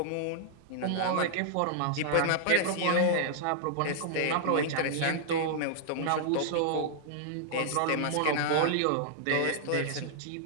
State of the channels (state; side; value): different; both; correlation -0.01